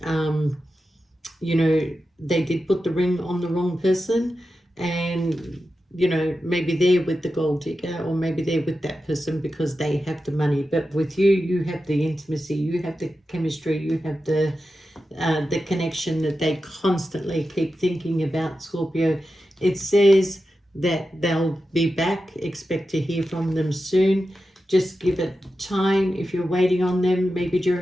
you know, they did put the ring on the wrong person, and, you know, maybe they're with the gold digger, or maybe they're with that person because they have the money. But with you, you have the intimacy, you have the chemistry, you have the connection that they constantly keep thinking about, Scorpio. It says that they'll be back. Expect to hear from them soon. Just give it time. If you're waiting on them, maybe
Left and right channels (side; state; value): both; normal; correlation 0.91